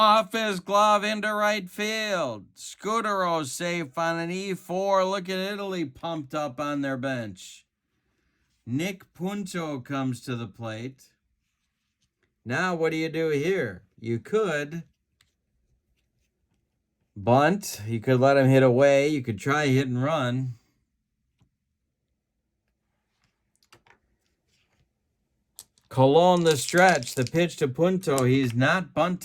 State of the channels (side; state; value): both; identical; correlation 1.00